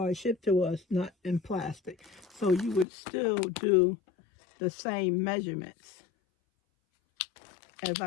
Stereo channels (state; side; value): drops out; right; at 2.9 s